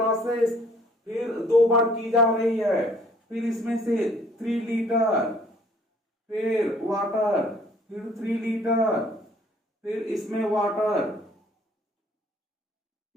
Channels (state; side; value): normal; both; correlation 0.59